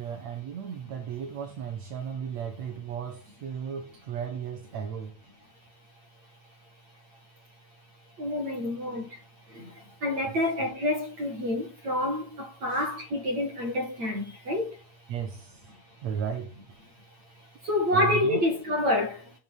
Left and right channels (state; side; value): late; left; 8.7 ms